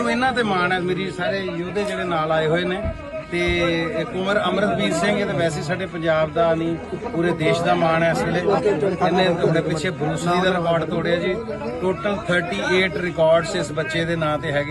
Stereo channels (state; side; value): identical; both; correlation 1.00